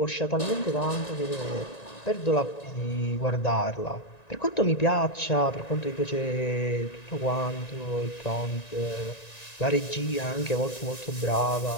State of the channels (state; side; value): late; right; 1.9 ms